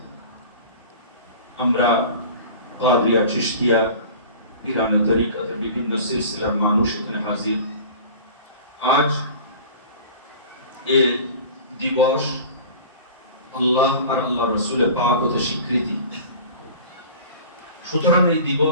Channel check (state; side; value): inverted; both; correlation -0.40